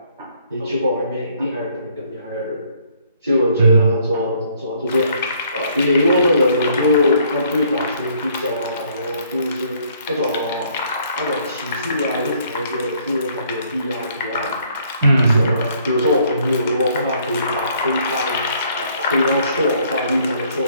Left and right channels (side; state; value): both; inverted; correlation -0.64